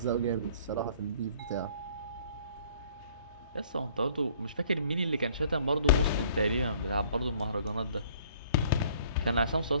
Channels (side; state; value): both; inverted; correlation -0.56